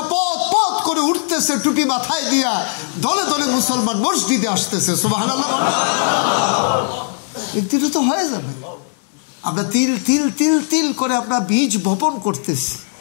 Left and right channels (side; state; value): right; silent; digital silence